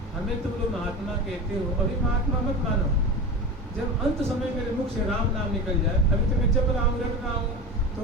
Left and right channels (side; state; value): both; normal; correlation 0.27